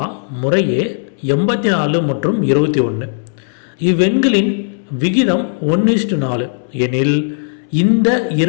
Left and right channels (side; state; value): right; silent; 67 dB below the other